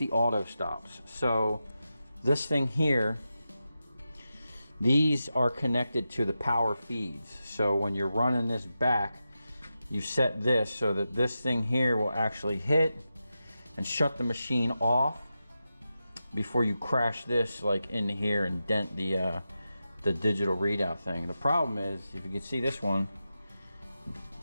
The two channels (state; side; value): inverted; both; correlation -0.90